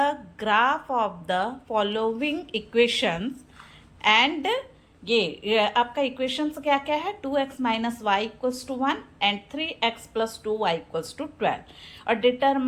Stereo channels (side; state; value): both; identical; correlation 1.00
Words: graph of the following equations and ये आपका इक्वेशंस क्या क्या है, 2x minus y equals to 1 and 3x plus 2y equals to 12 और